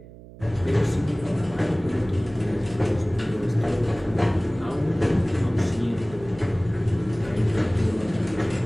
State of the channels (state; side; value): noise; right; hum, 18 dB below the sound